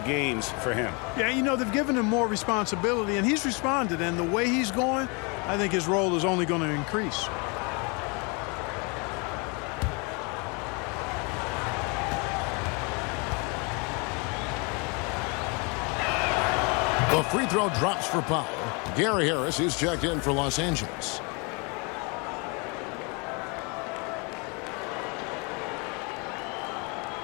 games for him. Yeah, you know, they've given him more responsibility, and he's responded. And the way he's going, I think his role is only going to increase. The free throw drops for Powell. Gary Harris is checked in for Los Angeles.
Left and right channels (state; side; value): quieter; right; 31.6 dB